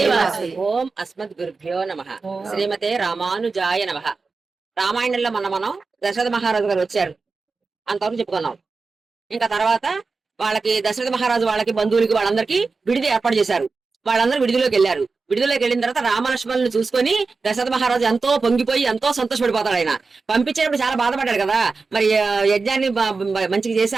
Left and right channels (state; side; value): quieter; left; 4.3 dB